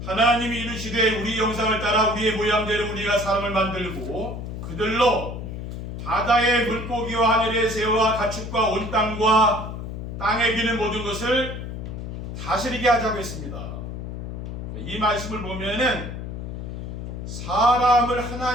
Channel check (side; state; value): left; noise; hum, 7 dB below the sound